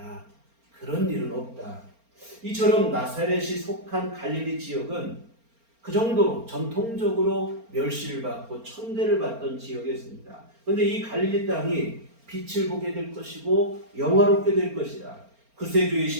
그런 일은 없다. 이처럼 나사렛이 속한 갈릴리 지역은 그 정도로 전통적으로 멸시를 받고 천대를 받던 지역이었습니다. 그런데 이 갈릴리 땅이 빛을 보게 될 것이고 영화롭게 될 것이다.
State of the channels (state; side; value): late; left; 4.3 ms